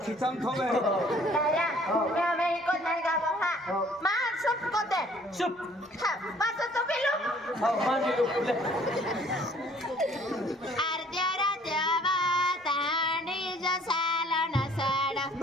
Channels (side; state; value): both; normal; correlation 0.57